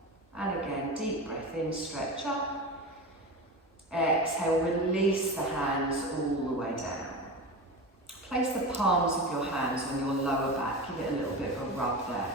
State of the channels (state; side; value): normal; both; correlation 0.26